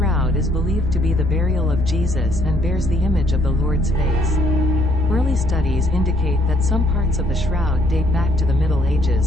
is believed to be the burial of Jesus and bears the image of the Lord's face. Early studies indicate that some parts of the shroud date back to the Middle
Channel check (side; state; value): both; normal; correlation 0.66